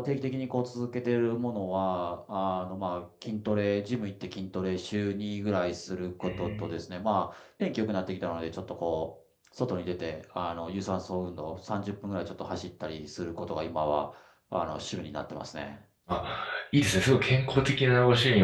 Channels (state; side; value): identical; both; correlation 1.00